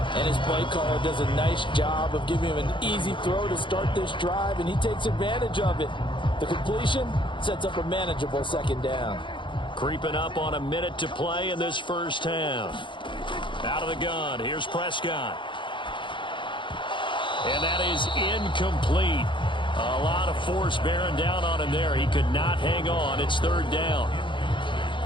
And his play caller does a nice job of giving him an easy throw to start this drive, and he takes advantage of it. The completion sets up a manageable 2nd down. Creeping up on a minute to play in this first half. Out of the gun. Here's Prescott. And that is incomplete. A lot of force bearing down on him there. He could not hang on. It's 3rd down.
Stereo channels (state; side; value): late; right; 0.24 ms